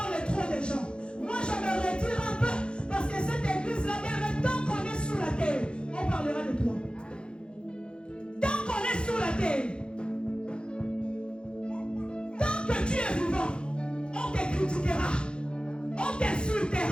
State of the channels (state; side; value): late; right; 0.053 ms